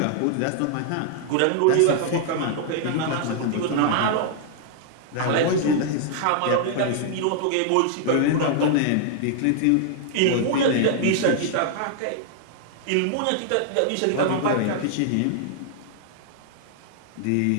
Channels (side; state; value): both; different; correlation 0.00